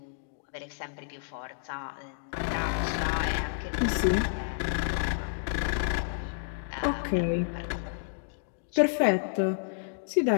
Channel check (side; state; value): right; silent; digital silence